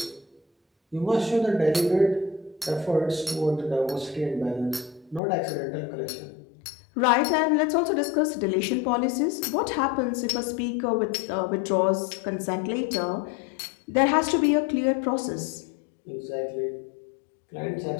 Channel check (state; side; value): drops out; right; at 5.2 s